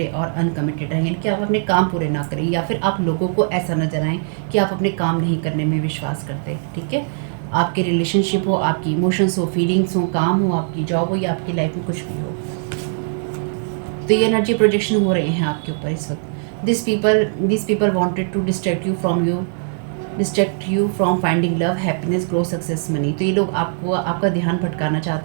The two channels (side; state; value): left; silent; 66 dB below the other